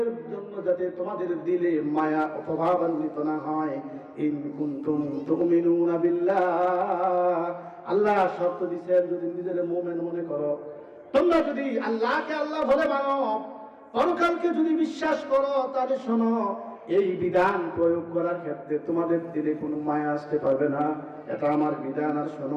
জন্য যাতে তোমাদের দিলে মায়া প্রভাবান্বিত না হয়। ইন কুনতুম তুমিনুনা বিল্লাহ, আল্লাহ শর্ত দিয়েছেন, যদি নিজের মুমিন মনে করো, তোমরা যদি আল্লাহকে আল্লাহ বলে মানো, পরকালকে যদি বিশ্বাস করো, তাহলে শোনো, এই বিধান প্রয়োগ করার ক্ষেত্রে তোমাদের দিলে কোনো মায়া আসতে পারবে না। এটা আমার বিধান। আর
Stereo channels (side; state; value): both; identical; correlation 1.00